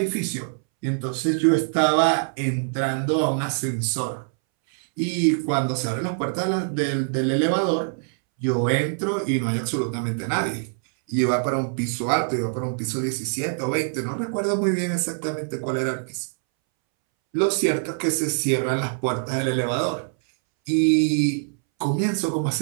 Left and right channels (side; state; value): left; silent; 63 dB below the other